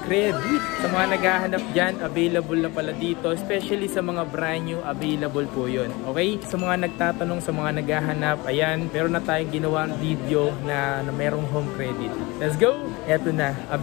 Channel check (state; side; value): quieter; right; 23.8 dB